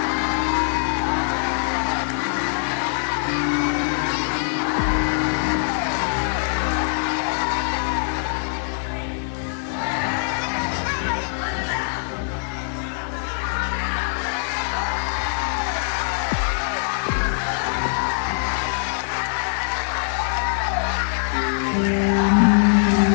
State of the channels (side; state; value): right; silent; 64 dB below the other